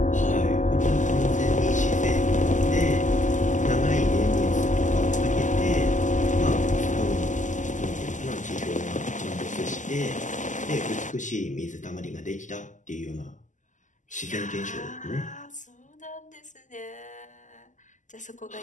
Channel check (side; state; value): right; late; 0.37 ms